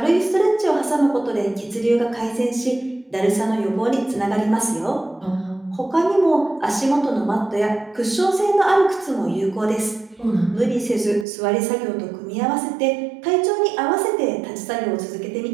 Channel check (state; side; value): drops out; left; at 11.2 s